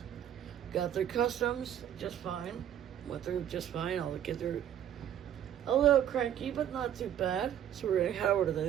Got through customs just fine. Went through just fine. All the kids are a little cranky, but not too bad. So we're going to head over to the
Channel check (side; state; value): left; quieter; 10.4 dB